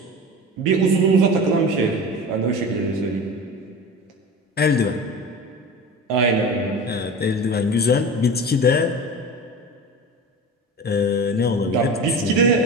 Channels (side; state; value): both; normal; correlation 0.32